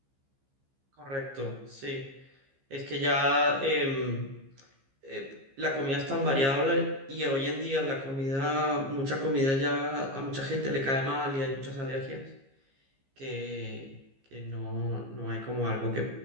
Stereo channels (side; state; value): left; late; 15 ms